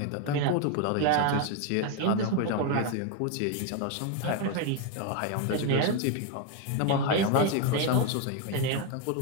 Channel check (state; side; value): different; both; correlation 0.01